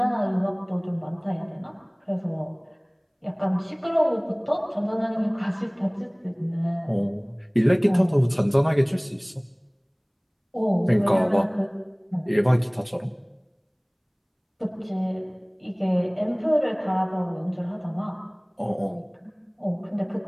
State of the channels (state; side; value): identical; both; correlation 1.00